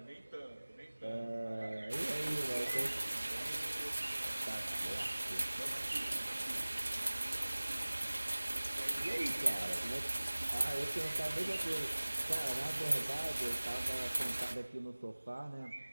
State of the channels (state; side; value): inverted; both; correlation -1.00